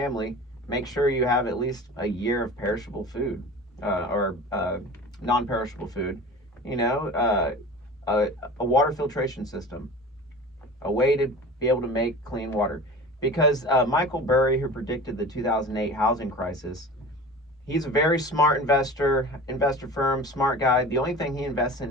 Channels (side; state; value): both; normal; correlation 0.37